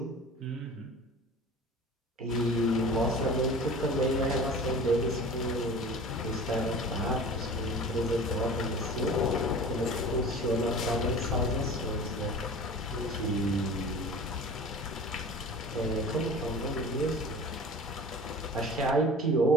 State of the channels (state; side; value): normal; both; correlation 0.39